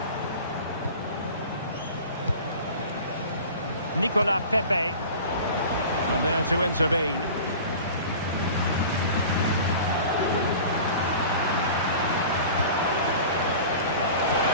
Nicolas Pepe. And there to intervene.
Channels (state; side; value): inverted; both; correlation -0.39